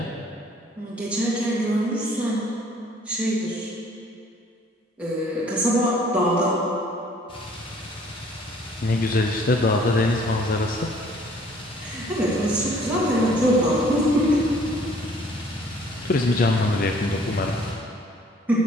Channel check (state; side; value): normal; both; correlation 0.57